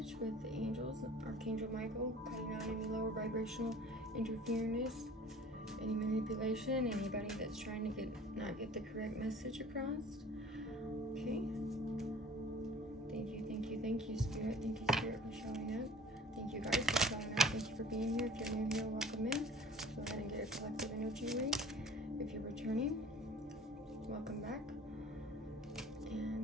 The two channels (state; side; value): normal; both; correlation 0.47